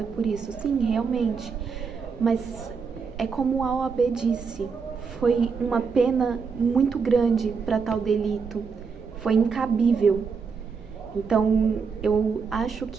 por isso. Sim, realmente. Mas é como a OAB disse, foi uma pena muito grande para tal delito. Foi incabível. Então, eu acho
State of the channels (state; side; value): quieter; left; 5.5 dB